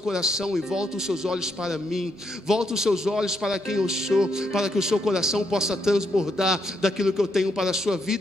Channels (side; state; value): right; noise; hum, 30 dB below the sound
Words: e volta os seus olhos para mim. Volta os seus olhos para quem eu sou, para que o seu coração possa transbordar daquilo que eu tenho para a sua